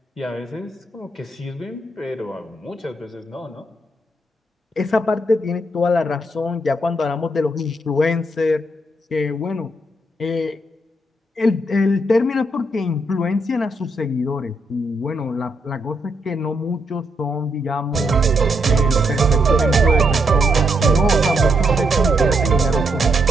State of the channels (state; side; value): normal; both; correlation 0.77